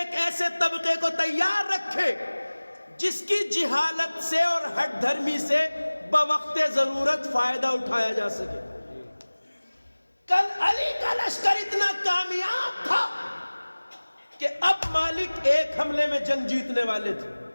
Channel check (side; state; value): both; inverted; correlation -1.00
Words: ایسے طبقے کو تیار رکھے جس کی جہالت سے اور ہٹ دھرمی سے بوقت ضرورت فائدہ اٹھایا جا سکے۔ کل علی کا لشکر اتنا کامیاب تھا کہ اب مالک ایک حملے میں جنگ جیتنے والے تھے،